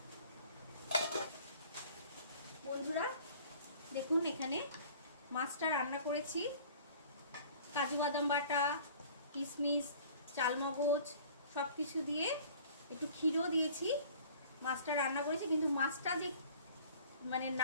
বন্ধুরা দেখুন, এখানে মাছটা রান্না করেছি, কাজু বাদাম বাটা, কিশমিশ, চালমগজ সব কিছু দিয়ে, একটু ক্ষীরও দিয়েছি। মাছটা রান্না করেছি, কিন্তু মাছটা যে মানে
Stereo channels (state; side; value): inverted; both; correlation -0.49